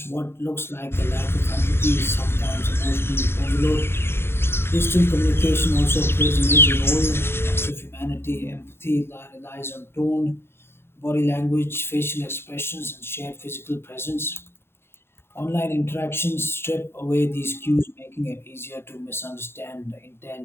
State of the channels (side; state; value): right; late; 0.11 ms